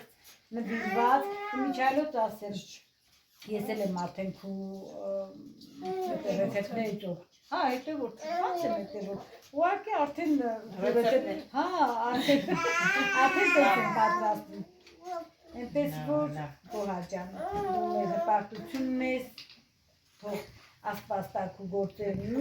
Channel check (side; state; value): both; identical; correlation 1.00